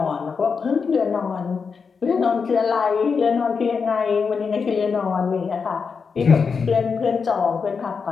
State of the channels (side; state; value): right; quieter; 5.5 dB